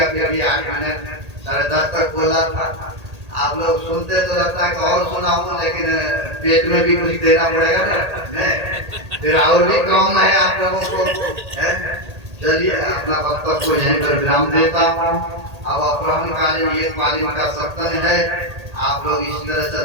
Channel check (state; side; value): late; left; 1.8 ms